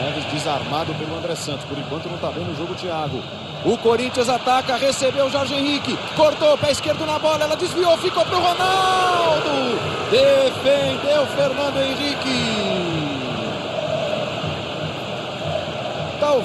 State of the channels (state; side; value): identical; both; correlation 1.00